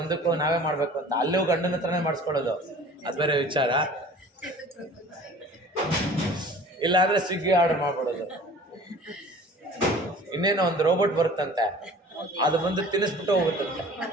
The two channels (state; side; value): normal; both; correlation 0.45